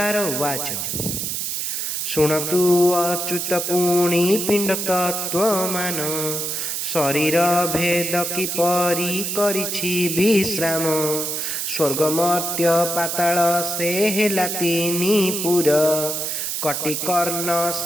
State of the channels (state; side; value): noise; right; hiss, 2 dB below the sound